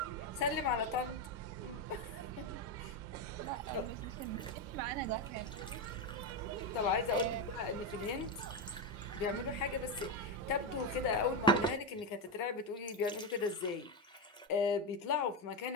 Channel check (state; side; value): normal; both; correlation 0.10